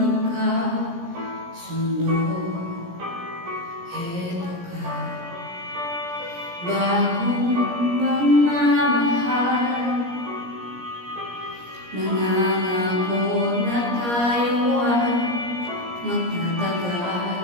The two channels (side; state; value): left; late; 17 ms